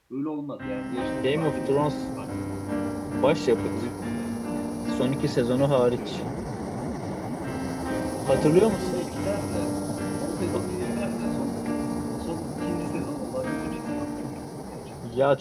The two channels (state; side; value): identical; both; correlation 1.00